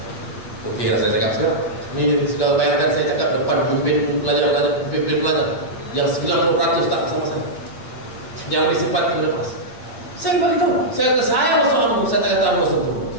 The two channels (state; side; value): late; right; 8.6 ms